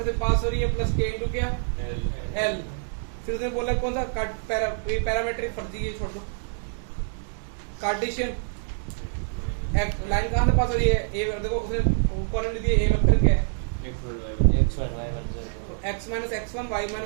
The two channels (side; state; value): left; silent; digital silence